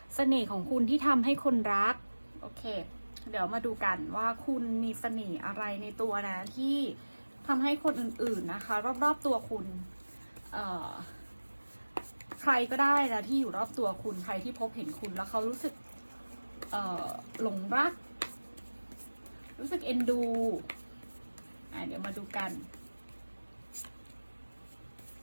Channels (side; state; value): both; inverted; correlation -1.00